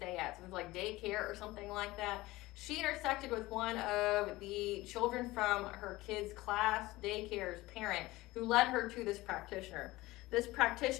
at. So it's like daycare or something like that. She intersected with one of the children from her kids' class daycare's parent, who led her to this practitioner. This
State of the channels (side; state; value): right; quieter; 19.2 dB